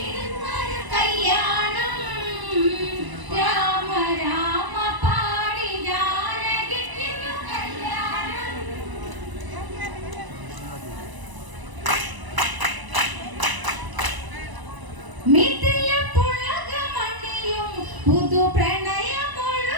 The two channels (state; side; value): late; left; 1.0 ms